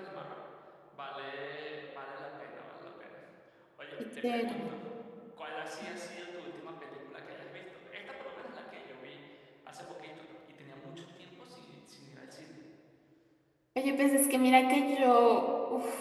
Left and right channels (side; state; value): both; identical; correlation 1.00